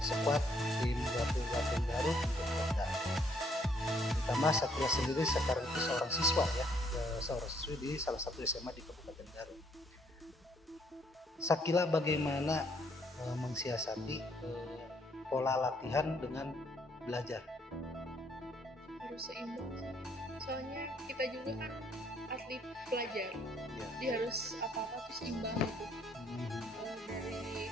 squad tim Batu Garut untuk Polda. Ditambah Sakila sendiri sekarang itu seorang siswa ya, seorang siswi di salah satu SMA di Kabupaten Garut. Sakila bagaimana mensiasati pola latihan dengan belajar? Harus seimbang sih. Soalnya kita juga kan atlet pelajar, Ya. jadi harus apa-apa tuh seimbang gitu. Dari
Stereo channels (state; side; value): normal; both; correlation 0.68